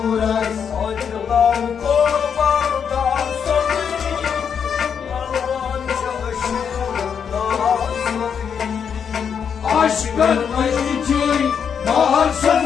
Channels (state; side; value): quieter; right; 7.2 dB